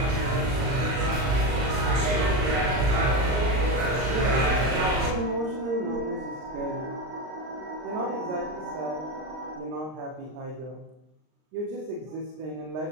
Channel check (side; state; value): left; late; 39 ms